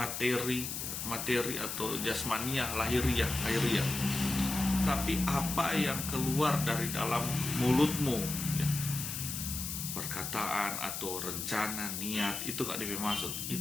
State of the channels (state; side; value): noise; left; hiss, 4 dB below the sound